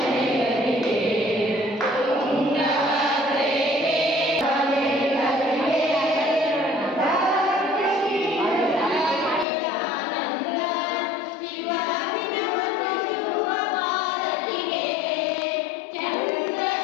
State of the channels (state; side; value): drops out; right; at 9.5 s